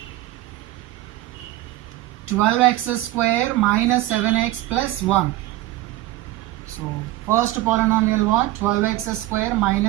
12x square minus 7x plus 1. So first polynomial what? 12x square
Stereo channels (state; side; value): quieter; left; 16.6 dB